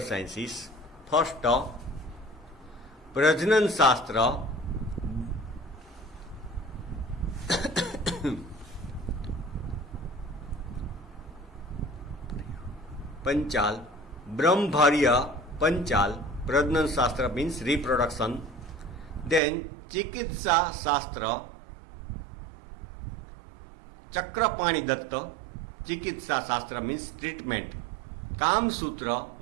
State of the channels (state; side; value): drops out; left; at 19.4 s